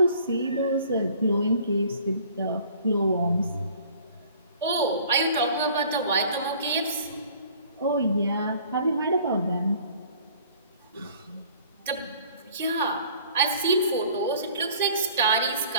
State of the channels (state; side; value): inverted; both; correlation -0.52